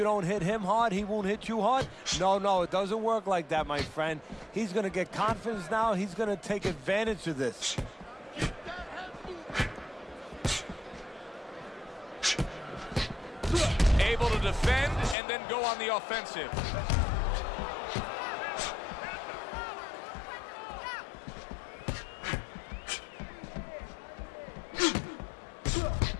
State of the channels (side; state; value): right; drops out; at 15.2 s